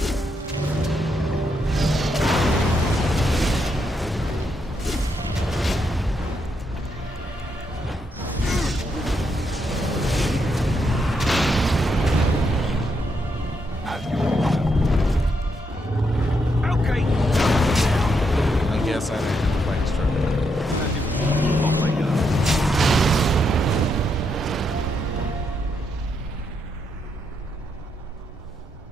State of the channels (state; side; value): normal; both; correlation 0.79